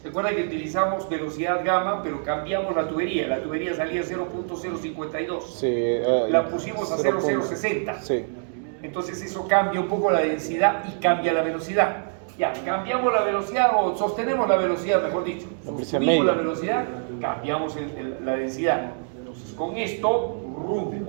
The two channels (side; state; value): left; silent; digital silence